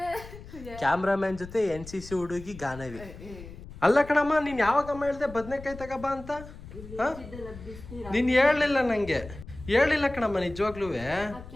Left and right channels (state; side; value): noise; left; rumble, 15 dB below the sound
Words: ಕ್ಯಾಮ್ರಾಮನ್ ಜೊತೆ NCC ಹುಡುಗಿ ಗಾನವಿ. ಅಲ್ಲ ಕಣಮ್ಮ, ನೀನ್ ಯಾವಾಗಮ್ಮ ಹೇಳ್ದೆ ಬದನೆಕಾಯಿ ತಗೋಬ ಅಂತ? ನೀನ್ ಹೇಳಲಿಲ್ಲ ನಂಗೆ, ಹೇಳಿಲ್ಲ ಕಣಮ್ಮ ನಿಜವಾಗ್ಲೂ.